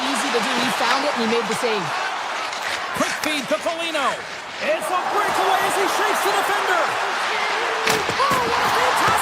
easy to do. He found it and he made the save. Quick feed to Foligno. It's a breakaway as he shakes the defender. Oh, what a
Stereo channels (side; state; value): both; identical; correlation 1.00